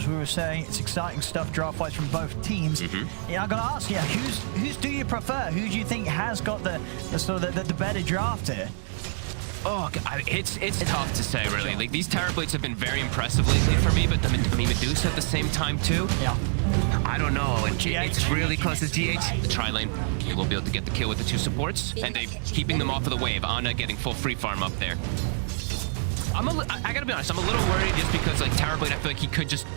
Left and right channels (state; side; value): silent; left; 60 dB below the other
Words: we were saying, it's exciting stuff draft-wise from both teams. Yeah, I'm going to ask you, who's do you prefer? Who do you think has got the sort of the better draft here? Oh, it's tough to say, really. Like, these Terrorblades have been very impressive lately for me, but I mean, Medusa at the same time, too. Yeah. I don't know. It's really close to GH. The tri-lane, they will be able to get the kill with the 2 supports, and they keeping them off of the wave. Ana getting full free farm up there. I gotta be honest, I'm a little worried just because like Terrorblade, I feel like he could